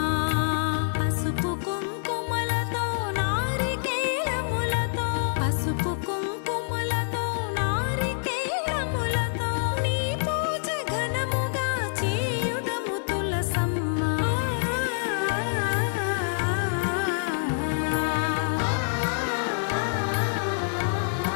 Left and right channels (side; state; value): right; silent; digital silence